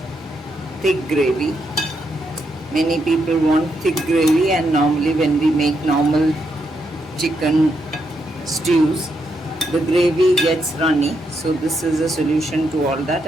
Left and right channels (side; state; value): both; normal; correlation 0.80